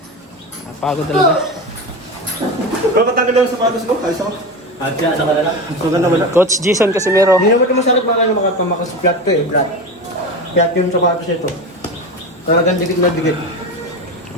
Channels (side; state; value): both; normal; correlation 0.24